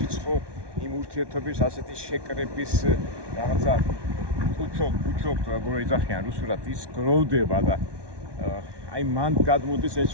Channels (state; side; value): late; left; 1.2 ms